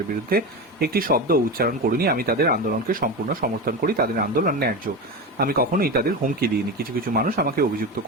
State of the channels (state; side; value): normal; both; correlation 0.21